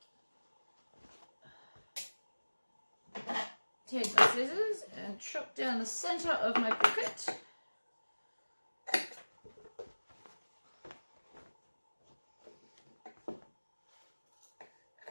Take my scissors and chop down the center of my pocket.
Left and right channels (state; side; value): inverted; both; correlation -1.00